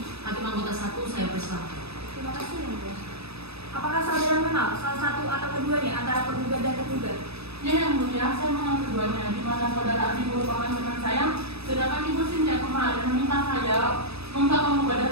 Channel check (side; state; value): left; late; 0.78 ms